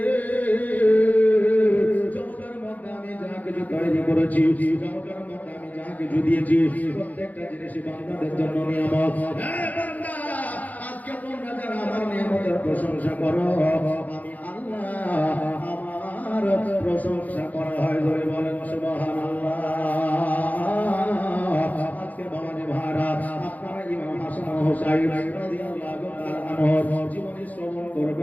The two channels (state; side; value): late; right; 0.078 ms